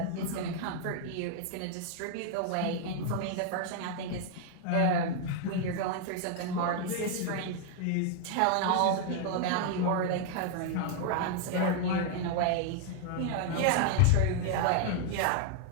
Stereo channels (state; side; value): different; both; correlation 0.00